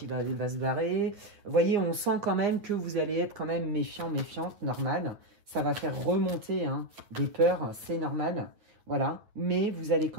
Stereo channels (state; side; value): late; left; 9.1 ms